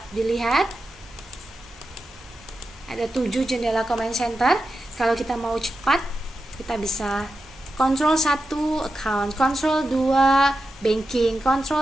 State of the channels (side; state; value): both; normal; correlation 0.90